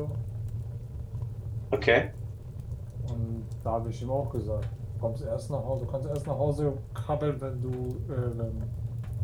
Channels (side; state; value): both; identical; correlation 1.00